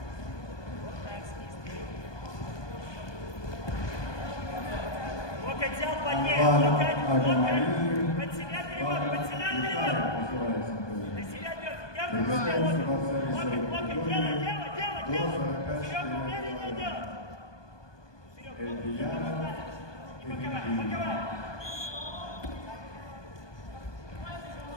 Вот так, снизу. Локоть взял, поднять, локоть. Под себя перевод. Для себя дергай, локоть, делай. Серега, умереннее делай. Серега, не боковай.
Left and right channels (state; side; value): late; right; 1.2 ms